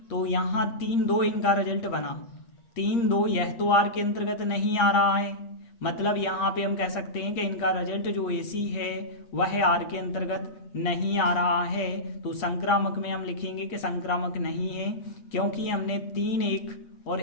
तो यहाँ 3-2 इनका रिजल्ट बना। 3-2 यह तो आर के अंतर्गत नहीं आ रहा है, मतलब यहाँ पे हम कह सकते हैं कि इनका रिजल्ट जो एसी है वह आर के अंतर्गत नहीं आ रहा है। तो संक्रामक में हम लिखेंगे कि संक्रामक नहीं है, क्योंकि हमने 3-1 और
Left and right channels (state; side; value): late; right; 8.5 ms